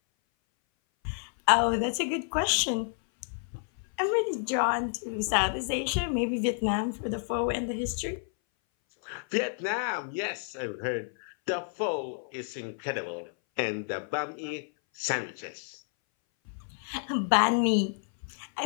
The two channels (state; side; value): silent; right; 58 dB below the other